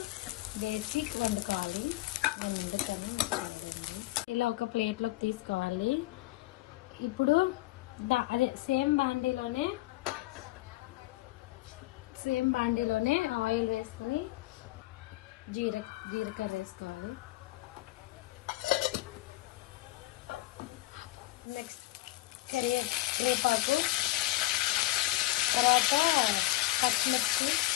వేసి వండుకోవాలి. ఇలా ఒక ప్లేట్లోకి తీసుకోవాలి. ఇప్పుడు అదే సేమ్ బాండీలోనే ఆయిల్ వేసుకొని జీలకర్ర వేసుకోవాలి. నెక్స్ట్ కరివేపాకు, తర్వాత పచ్చిమిర్చి,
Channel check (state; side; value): quieter; right; 18.8 dB